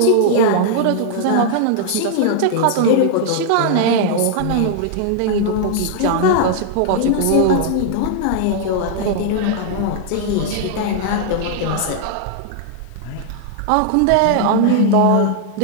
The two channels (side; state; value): both; different; correlation -0.01